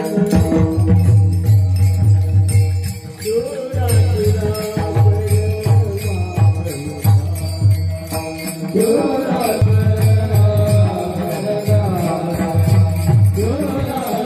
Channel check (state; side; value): identical; both; correlation 1.00